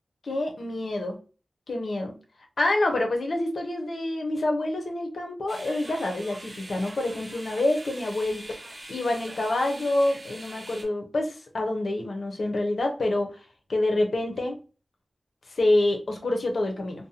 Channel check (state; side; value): normal; both; correlation 0.95